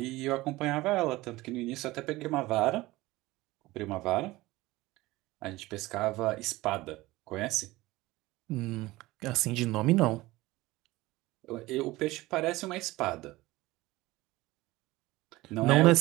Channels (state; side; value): quieter; left; 19.2 dB